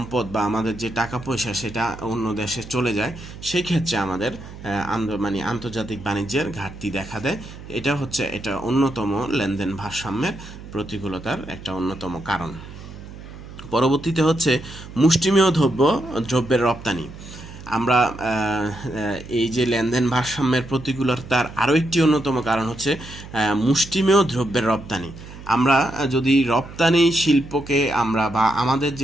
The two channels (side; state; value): right; noise; hum, 15 dB below the sound